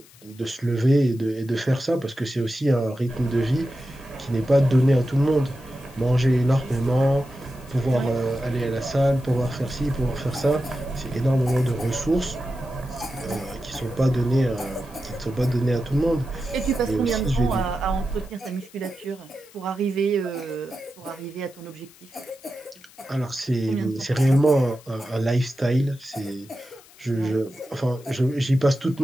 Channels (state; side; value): noise; left; hiss, 24 dB below the sound